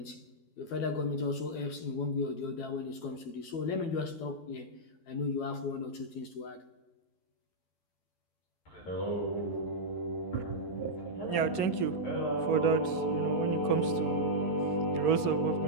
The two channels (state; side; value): late; right; 12 ms